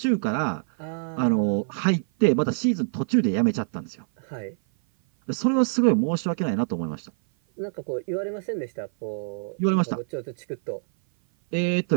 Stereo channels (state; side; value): silent; left; 56 dB below the other